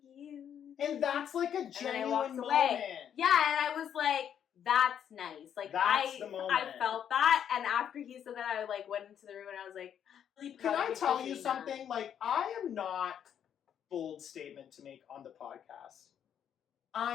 you. And that's like a genuine moment. Yeah, and I was like, That's nice. Like That's the moment. I felt that, and after he said that, I like went into the room and I was like, really can I tell you that. something? Like, I am not bold statement to make on the podcast.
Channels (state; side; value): quieter; right; 9.0 dB